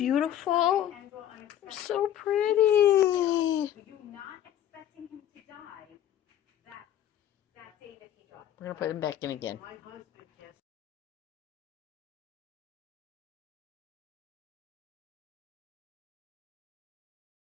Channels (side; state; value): right; quieter; 11.1 dB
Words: They're so pretty. Were you not expecting him to die that day that he died? We're gonna put them back in again. My husband